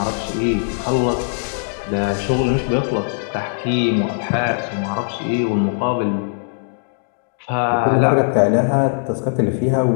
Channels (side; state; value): right; silent; digital silence